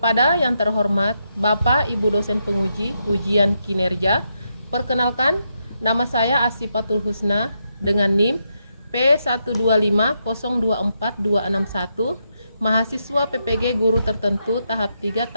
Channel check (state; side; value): inverted; both; correlation -0.81